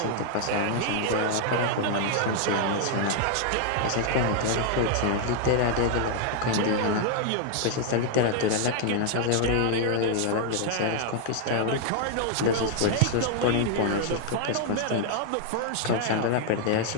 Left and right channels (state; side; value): different; both; correlation 0.00